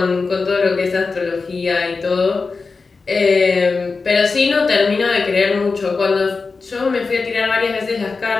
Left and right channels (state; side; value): quieter; right; 4.3 dB